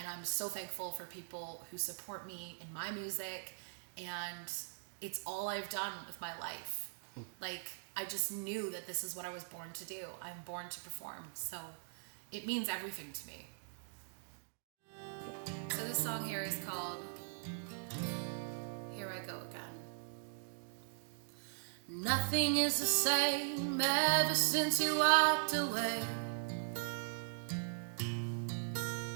I'm so thankful for people who support me in my music, and it's all I've done with my life. Like, I just knew that this is what I was born to do. I'm born to perform, so it means everything to me. So this song here is called Here I Go Again. Nothing is the same ever since you walked away.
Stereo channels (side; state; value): left; silent; digital silence